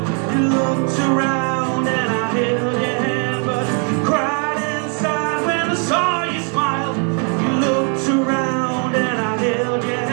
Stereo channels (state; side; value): quieter; left; 39.4 dB